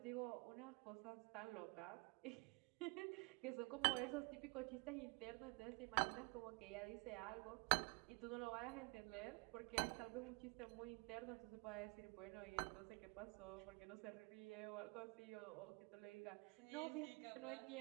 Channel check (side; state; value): left; quieter; 29.3 dB